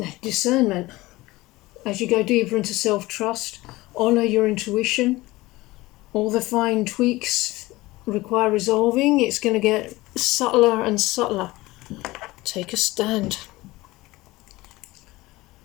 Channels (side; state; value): right; quieter; 19.7 dB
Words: discernment. As you go deeper into self-trust, honour your intuition. All the fine tweaks require resolving. It's going to get subtler and subtler. Take a stand.